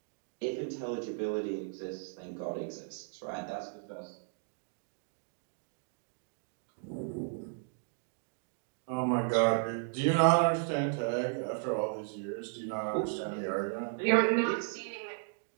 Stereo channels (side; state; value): left; silent; digital silence